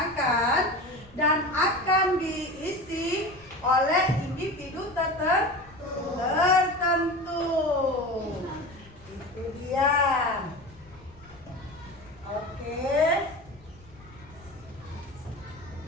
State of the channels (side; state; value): left; noise; rumble, 24 dB below the sound